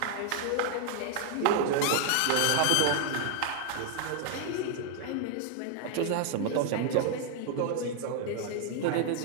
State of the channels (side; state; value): both; different; correlation 0.00